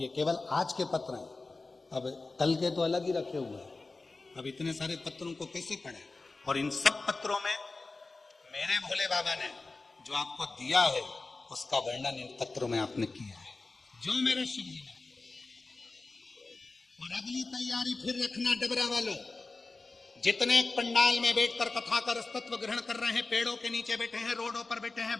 केवल आज के पत्र हैं। अब कल के तो अलग ही रखे हुए हैं। अब इतने सारे पत्रों को कैसे पढ़े? और इन सब पत्रों में मेरे भोले बाबा ने जो आपको दिया है उसका वर्णन इन पत्रों में आपने किया है, जो मेरे शिव जी ने। और अगली तैयारी फिर रखना डबरा वालों, जितने पंडाल में बैठकर कथा का रसतत्व ग्रहण कर रहे हैं, पेड़ों के नीचे बैठे हैं, रोडों पर बैठे हैं,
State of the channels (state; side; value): quieter; right; 3.5 dB